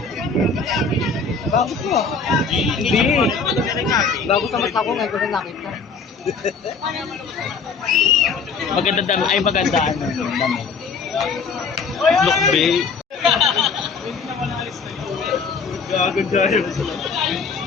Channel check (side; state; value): right; quieter; 5.0 dB